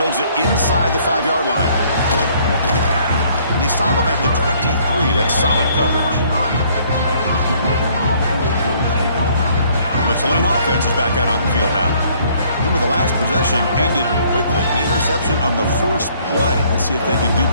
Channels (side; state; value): both; inverted; correlation -0.62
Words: it inside the 5-yard line. They stop him at the 23. That's solid coverage. The Tulane offense is back out on the field now. Remember, the last possession ended quickly. The interception on the first play. Let's see if they can do